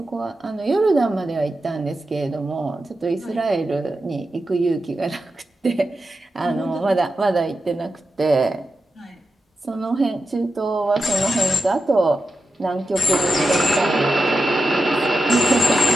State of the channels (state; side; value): normal; both; correlation 0.89